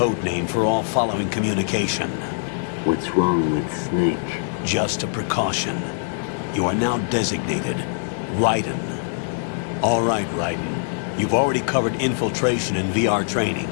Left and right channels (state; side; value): silent; right; 60 dB below the other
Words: name for all following communication. What's wrong with Snake? Just a precaution. You are now designated Raiden. All right, Raiden. You've already covered infiltration and VR training.